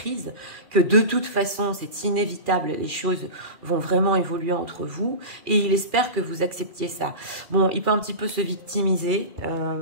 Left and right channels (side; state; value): left; late; 2.4 ms